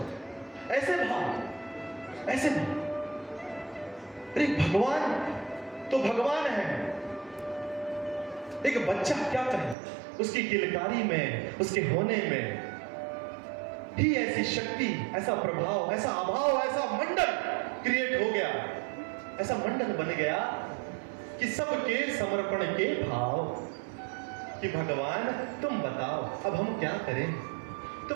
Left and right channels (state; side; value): drops out; left; at 9.8 s